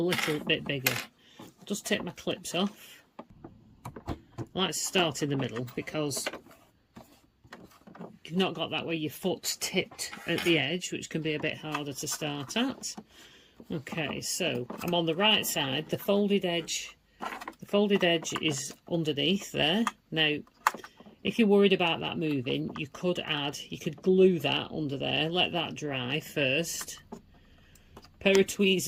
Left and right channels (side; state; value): both; identical; correlation 1.00